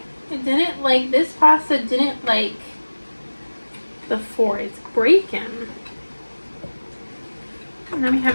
It didn't like, this pasta didn't like the 4. It's breaking. And then we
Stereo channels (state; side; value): inverted; both; correlation -1.00